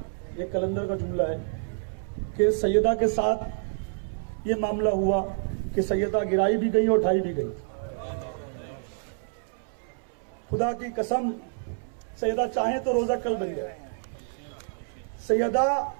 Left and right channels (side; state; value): left; silent; 59 dB below the other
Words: ये कलंदर का जुमला है कि सैयदा के साथ ये मामला हुआ कि सैयदा गिराई भी गई और उठाई भी गई। खुदा की कसम, सैयदा चाहे तो रोजा कल बन जाए। सैयदा